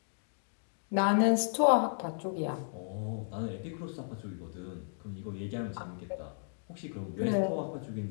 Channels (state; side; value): silent; right; digital silence